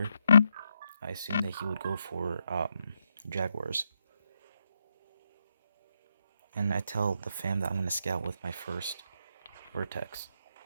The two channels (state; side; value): inverted; both; correlation -0.81